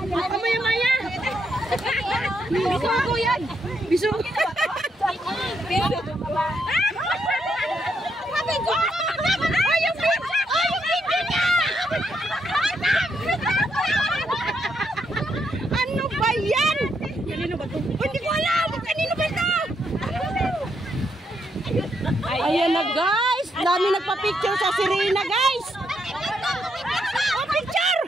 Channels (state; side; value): normal; both; correlation 0.78